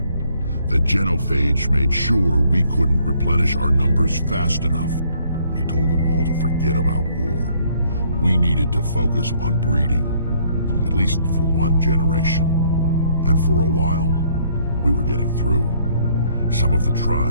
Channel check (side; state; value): both; inverted; correlation -0.65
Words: the genophage made sure we couldn't replenish our numbers fast enough. I told them all to forget about war. We needed to focus on breeding, at least for one generation. And for a while, we were getting through. Some of the